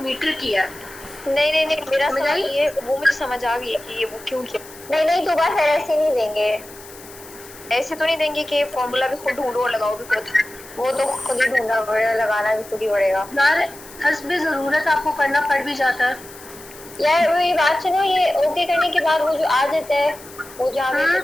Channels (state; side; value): noise; left; hiss, 19 dB below the sound